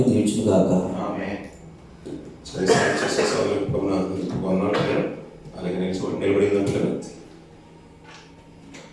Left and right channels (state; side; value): identical; both; correlation 1.00